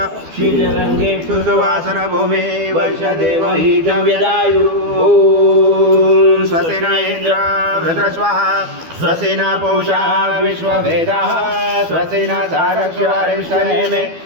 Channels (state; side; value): late; left; 12 ms